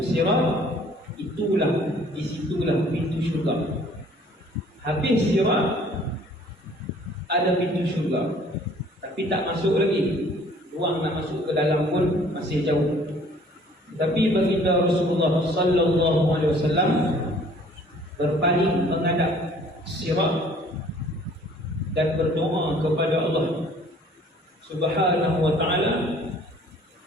sirat, disitulah pintu syurga. Habis sirat ada pintu syurga, tapi tak masuk lagi. Ruang nak masuk ke dalam pun masih jauh. Tapi baginda Rasulullah SAW berpaling menghadap sirat dan berdoa kepada Allah Subhanahu wa ta'ala,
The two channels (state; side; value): normal; both; correlation 0.55